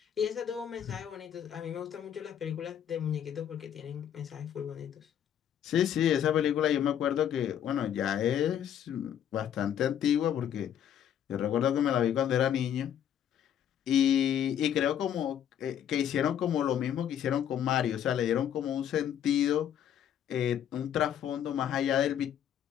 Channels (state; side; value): quieter; right; 9.7 dB